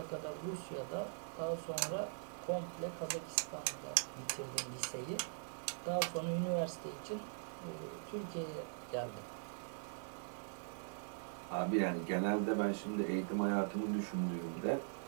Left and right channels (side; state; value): left; silent; digital silence